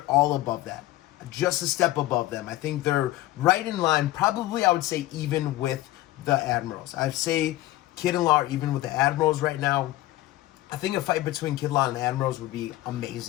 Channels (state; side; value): quieter; right; 16.3 dB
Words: all above that. Just a step above them. I think they're right in line, probably I would say even with the Admirals. I'd say Kid and Law are even with the Admirals right now. I think a fight between Kid Law and the Admirals would be